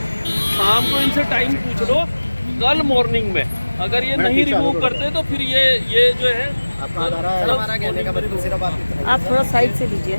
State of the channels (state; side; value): inverted; both; correlation -1.00